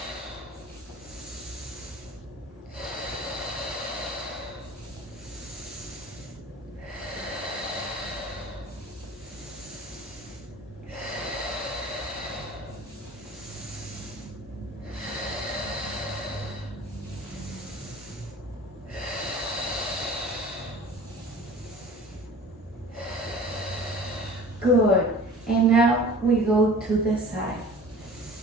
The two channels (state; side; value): normal; both; correlation 0.43